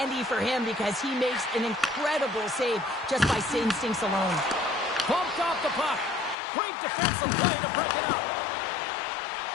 for him because he makes an incredible save just by instincts alone. Bumped off the puck. Great defensive play to break it up.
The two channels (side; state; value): right; drops out; at 6.4 s